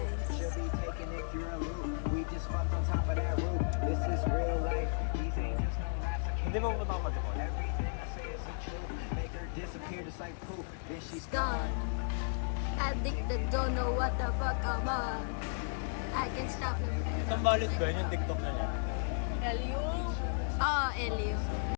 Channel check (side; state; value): right; silent; digital silence